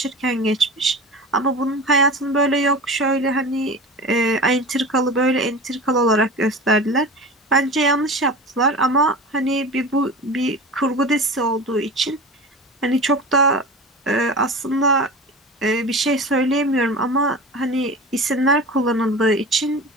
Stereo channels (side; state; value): both; normal; correlation 0.32